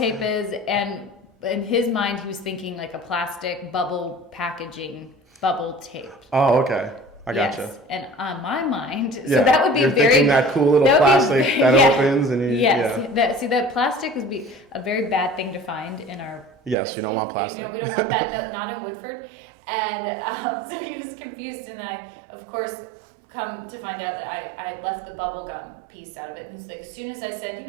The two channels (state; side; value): drops out; left; at 16.8 s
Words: is. And in his mind, he was thinking like a plastic bubble packaging bubble tape. Oh, okay. I gotcha. Yes. And on my mind, so that would be You're thinking that cool little plastic that opens and that plastic would be a very bad thing to find in our Yes, whiskey. You don't want plastic. We don't want that, not in Woodford. And so he was confused, and I, of course, come to find out that I had left the bubble gum piece out of it. And he's like, as soon as I said,